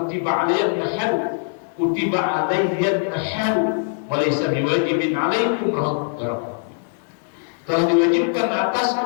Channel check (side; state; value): right; silent; digital silence